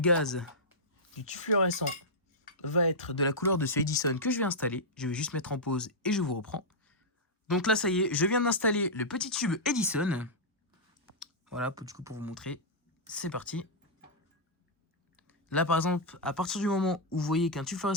du tube fluorescent va être de la couleur de ce Edison que je vais installer, je vais juste mettre en pause et je vous reprends. Donc là ça y est, je viens d'installer le petit tube Edison. Voilà, du coup pour vous montrer. C'est parti. Là, par exemple, à partir du moment où vous voyez qu'un tube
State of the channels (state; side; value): normal; both; correlation -0.09